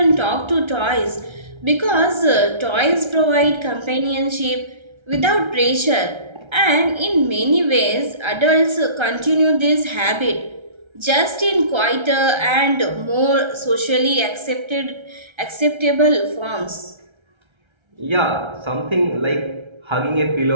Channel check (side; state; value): left; late; 1.3 ms